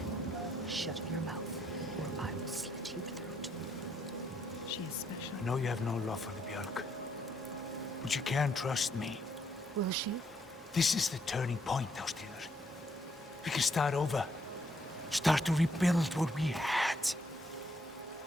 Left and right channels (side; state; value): both; normal; correlation 0.73